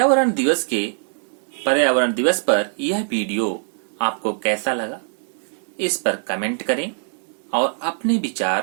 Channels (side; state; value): left; silent; digital silence